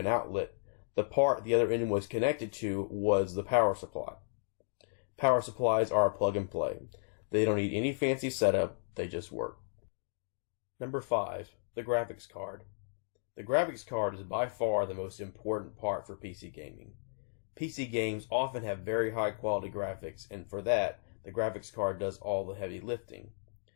outlet, the part the other end was connected to was the power supply. Power supplies are plug and play. They don't need any fancy setup, they just work. Number 5, the graphics card. The graphics card is by far the most important part for PC gaming. PC games often have very high quality graphics, and for that, the graphics card does all the heavy lifting.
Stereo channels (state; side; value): silent; right; digital silence